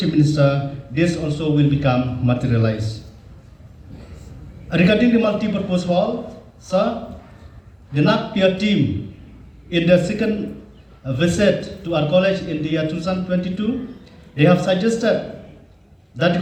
Minister, this also will become materialized. Regarding the multi-purpose hall, sir, the NAC peer team in the second visit to our college in the year 2022, they have suggested that the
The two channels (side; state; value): both; identical; correlation 1.00